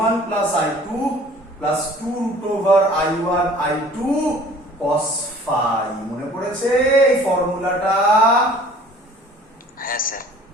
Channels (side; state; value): both; normal; correlation 0.50